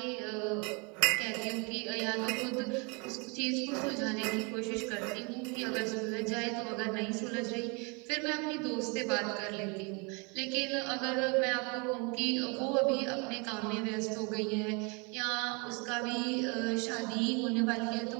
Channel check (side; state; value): left; quieter; 31.4 dB